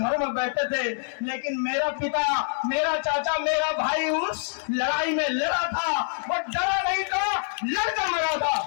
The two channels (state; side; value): silent; right; 61 dB below the other